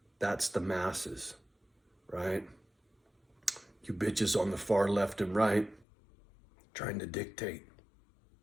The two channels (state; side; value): drops out; right; at 5.9 s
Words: that's the masses, right? You bitches on the far left and right trying to dictate.